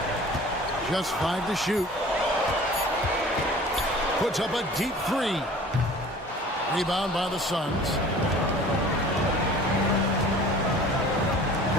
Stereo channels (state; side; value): normal; both; correlation 0.46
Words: Just 5 to shoot. Puts up a deep 3. Rebound by the Suns.